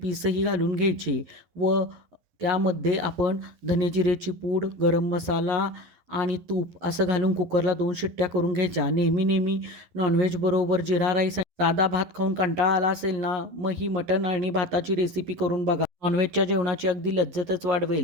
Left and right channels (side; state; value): left; late; 11 ms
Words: घालून घ्यायचे व त्यामध्ये आपण धने जिरेची पूड, गरम मसाला आणि तूप असं घालून कुकरला 2 शिट्ट्या करून घ्यायच्या. नेहमी नॉनव्हेज बरोबर जिरा राईस आणि साधा भात खाऊन कंटाळा आला असेल ना, मग ही मटण आणि भाताची रेसिपी करून बघा. नॉनव्हेजच्या जेवणाची अगदी लज्जतच